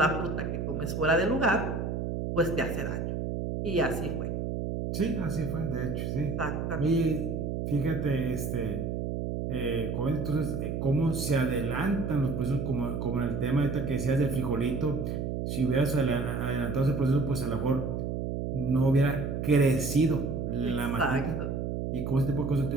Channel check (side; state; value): right; noise; hum, 2 dB below the sound